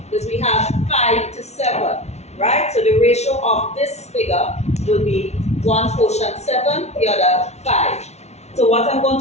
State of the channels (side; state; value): right; late; 0.32 ms